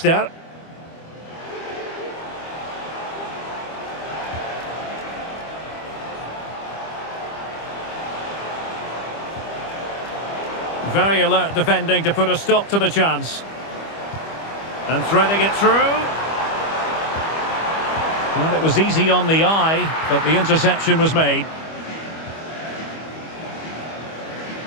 Very alert defending to put a stop to the chance. And threading it through. Well, it was easy on the eye, but the interception was made.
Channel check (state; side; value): late; right; 25 ms